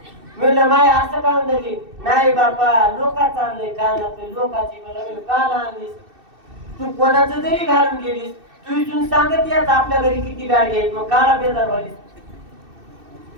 म्हणलं माय असं का म्हणली नाही बापा लोकांचं आणलंय कानात लोकांची कान आणलीस तू कोणाचं जरी घालून गेलीस तू इथून सांगत याच आपल्या घरी किती गाडी आहेत मग काला बेजार व्हालीस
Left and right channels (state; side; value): late; left; 2.6 ms